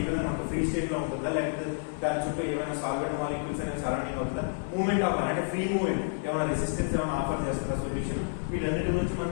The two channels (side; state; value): right; silent; digital silence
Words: ఈ విధంగా ఉంటుంది, ఫ్రీ స్టేట్ లో ఉంటుందా లేకపోతే దాని చుట్టూ ఏమైనా సాల్వెంట్ మాలిక్యూల్స్ అనేది సరౌండింగ్ అవుతుందా, మూవ్మెంట్ ఆఫ్ అంటే ఫ్రీ మూవ్మెంట్, ఏమైనా రెసిస్టెన్స్ ఏమైనా ఆఫర్ చేస్తుందా సొల్యూషన్, వీటన్నిటి గురించి మనం